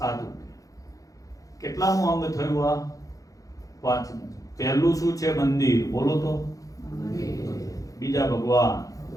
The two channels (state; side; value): late; right; 0.17 ms